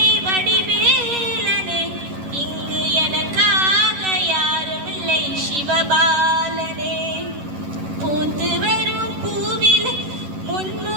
வடிவேலனே இங்கு எனக்காக யாருமில்லை சிவபாலனே. பூத்து வரும் பூவில்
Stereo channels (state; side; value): late; left; 11 ms